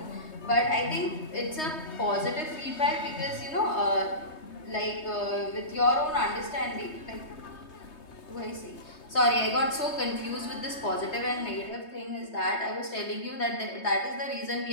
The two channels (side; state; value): right; late; 3.2 ms